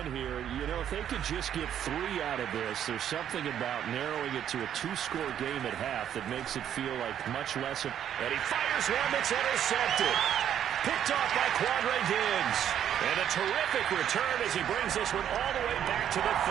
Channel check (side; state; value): left; quieter; 9.9 dB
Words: here. You know, if they could just get 3 out of this, there's something about narrowing it to a 2-score game at half that makes it feel like much less of... And he fires one that's intercepted. Picked off by Quadre Diggs. And a terrific return as he brings this one all the way back to the